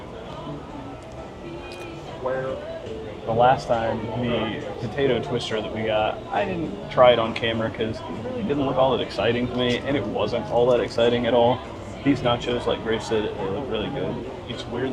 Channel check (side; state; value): both; identical; correlation 1.00